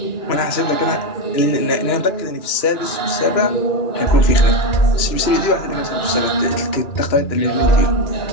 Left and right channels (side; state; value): right; late; 2.4 ms